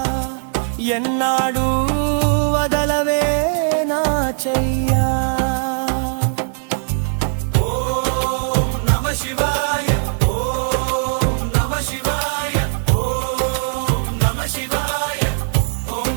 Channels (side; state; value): left; silent; 66 dB below the other